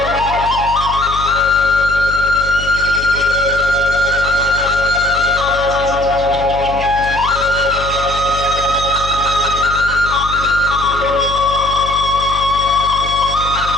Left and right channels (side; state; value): left; noise; hum, 10 dB below the sound